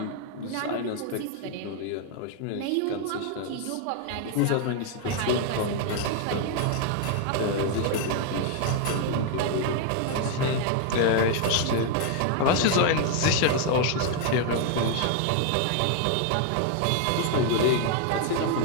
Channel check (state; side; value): different; both; correlation 0.00